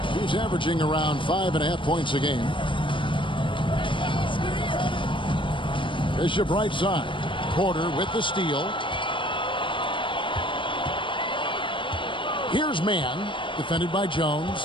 He's averaging around 5.5 points a game. Bishop right side. Porter with the steal. Here's Man, defended by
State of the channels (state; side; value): late; right; 0.24 ms